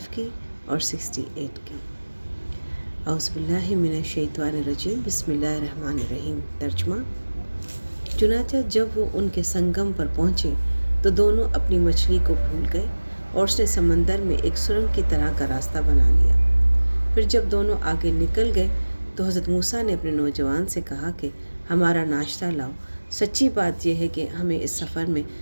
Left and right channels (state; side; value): inverted; both; correlation -1.00